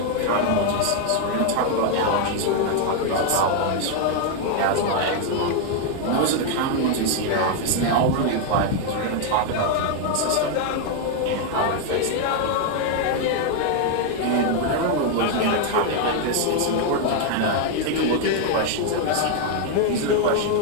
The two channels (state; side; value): different; both; correlation 0.00